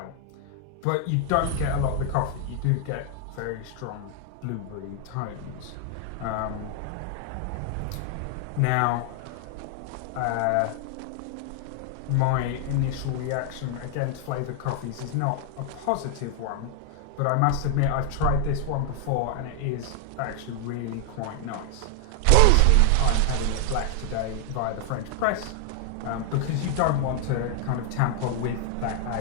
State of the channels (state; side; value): different; both; correlation 0.00